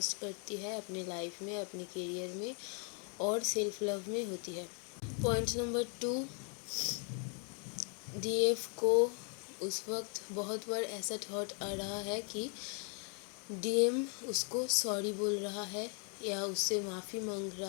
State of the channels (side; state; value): right; quieter; 39.5 dB